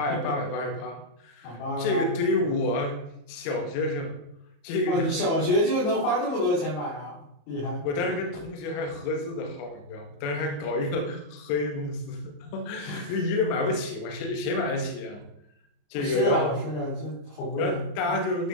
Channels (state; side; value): late; right; 35 ms